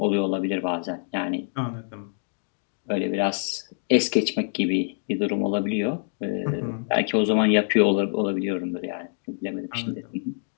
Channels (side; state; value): right; silent; digital silence